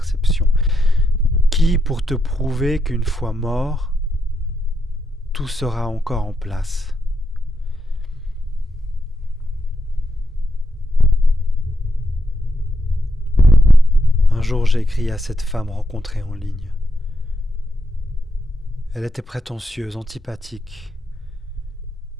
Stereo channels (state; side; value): normal; both; correlation 0.83